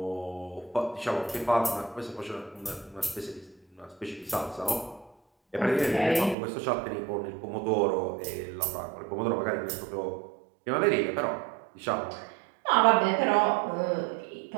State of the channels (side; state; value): left; drops out; at 6.4 s